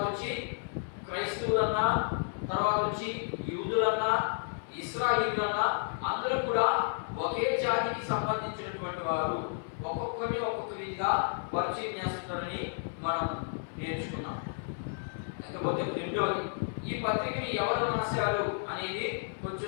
వచ్చి క్రైస్తవులన్నా, తర్వాత వచ్చి యూదులన్నా, ఇశ్రాయేలీయులన్నా అందరూ కూడా ఒకే జాతికి సంబంధించినటువంటి వారు. ఒక్కొక్కరిని ఒక్కొక్క రీతిగా పరిచయం చేస్తుంటారని మనం నేర్చుకున్నాం. లేకపోతే రెండవది, ఈ పత్రికని ఎవరు రాశారు అనేది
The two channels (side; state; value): right; silent; 57 dB below the other